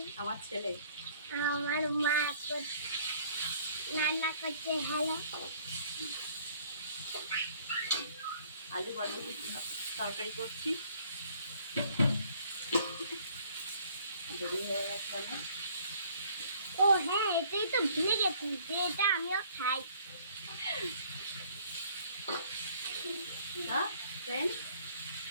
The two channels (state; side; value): inverted; both; correlation -0.58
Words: আমার ছেলে আমার মা রান্না করছে। হ্যালো, আলু বরবটি তরকারি করছি। দেরি হয়ে গেছে অনেক। ও হ্যাঁ, এটাই তো ভুলে গেছি যে এটা আমিও খাই। ফ্রেন্ডস,